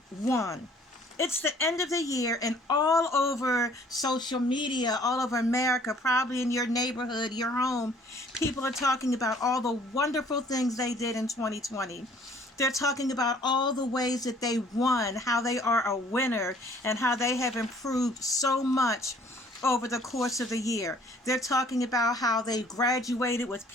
won. It's the end of the year, and all over social media, all over America, probably in your neighborhood, your home, people are talking about all the wonderful things they did in 2020. They're talking about all the ways that they won, how they are a winner, and how they have improved so much over the course of the year. They're talking about how they graduated with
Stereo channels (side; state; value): both; normal; correlation 0.57